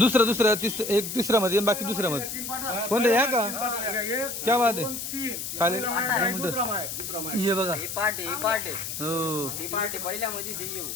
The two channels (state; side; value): noise; left; hiss, 6 dB below the sound